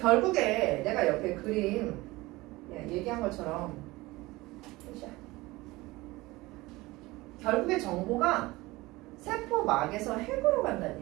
내가 옆에 그림 얘기한 것처럼 결국에 정보가 세포막에서 핵으로 간다는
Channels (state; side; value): quieter; left; 20.6 dB